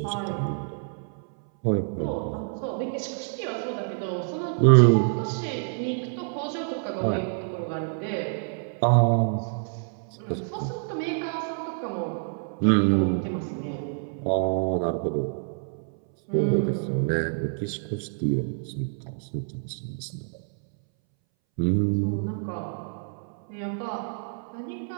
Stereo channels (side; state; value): left; silent; 60 dB below the other